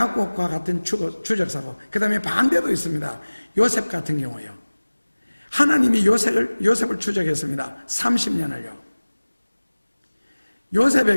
같은 추적사고, 그 다음에 반대도 있습니다. 요셉 같은 경우요. 하나님이 요셉을 추적했습니다. 30년을요.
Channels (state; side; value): inverted; both; correlation -1.00